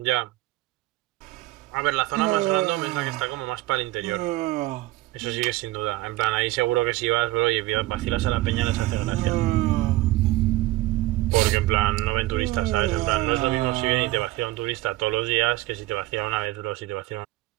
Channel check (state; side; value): quieter; left; 18.2 dB